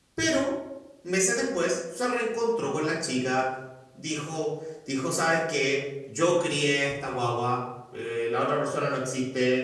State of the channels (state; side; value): identical; both; correlation 1.00